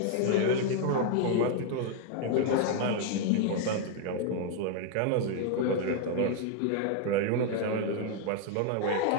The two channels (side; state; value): both; different; correlation 0.00